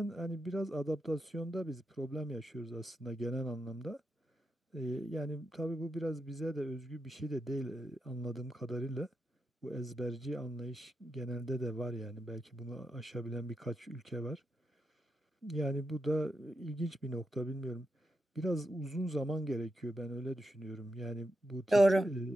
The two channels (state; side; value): normal; both; correlation 0.86